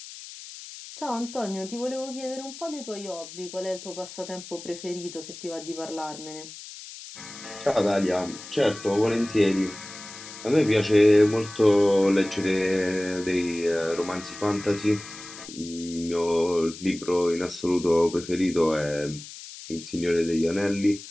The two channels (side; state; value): left; noise; hiss, 14 dB below the sound